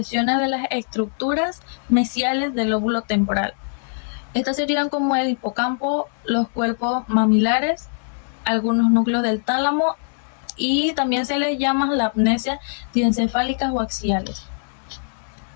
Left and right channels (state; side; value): silent; right; digital silence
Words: de las estructuras mesiales del lóbulo temporal. Estas serían como el hipocampo, los cuerpos mamilares, algunos núcleos del tálamo y también se les llama la amnesia diencefálicas o axiales.